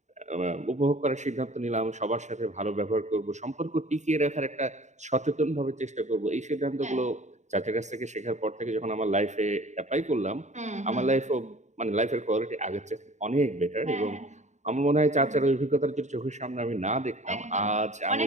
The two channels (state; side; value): late; left; 0.34 ms